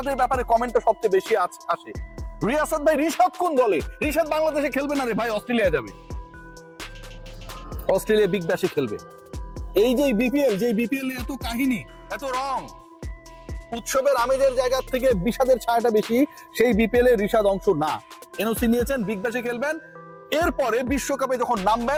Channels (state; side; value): identical; both; correlation 1.00